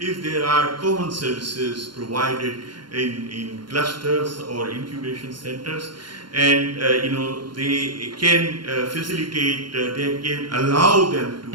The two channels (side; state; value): left; late; 0.72 ms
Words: there are common services provided in clusters or incubation centers, and they can facilitate, they can allow them